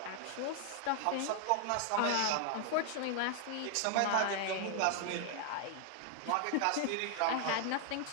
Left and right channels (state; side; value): different; both; correlation 0.00